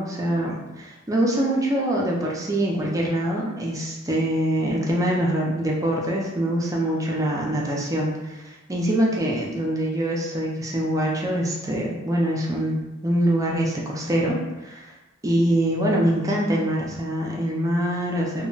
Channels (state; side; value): normal; both; correlation 0.67